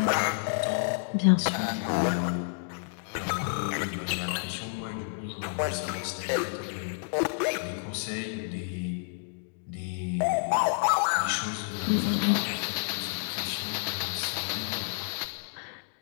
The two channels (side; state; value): right; silent; digital silence